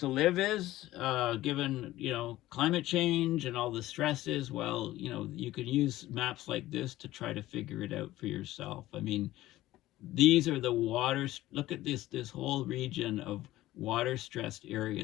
live is, given, climate change and all the stresses, well, you can use maps like this to try to figure it out for yourself. I mean, these are the waters. Look at this whole region of water stressed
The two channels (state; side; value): quieter; right; 16.0 dB